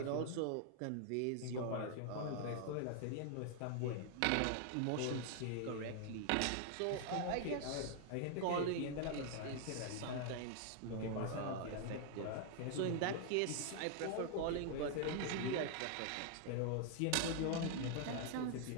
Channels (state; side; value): different; both; correlation 0.00